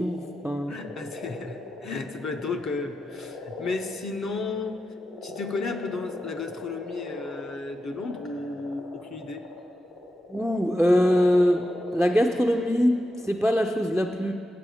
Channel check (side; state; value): both; normal; correlation 0.89